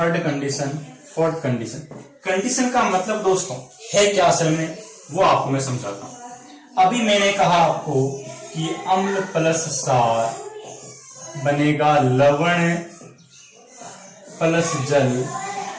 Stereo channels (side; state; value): both; identical; correlation 1.00